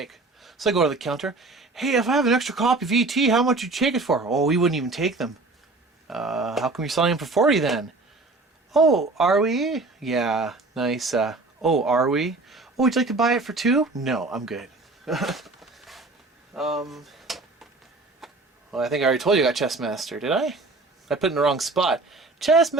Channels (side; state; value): left; quieter; 3.4 dB